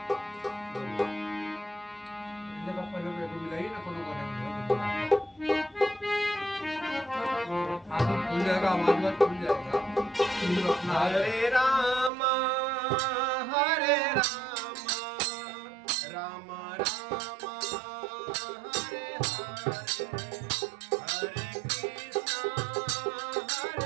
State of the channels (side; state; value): left; drops out; at 12.1 s